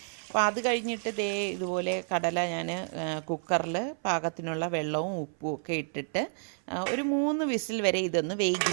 അപ്പോൾ അത് കഴിഞ്ഞിട്ട് ഇതുപോലെ കടല ഞാൻ കുക്കറിൽ പാകത്തിനുള്ള വെള്ളവും ഉപ്പും ഒക്കെ ഇട്ടിട്ട് ഒരു 3 വിസിൽ വരെ ഇതൊന്ന്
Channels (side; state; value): left; silent; 58 dB below the other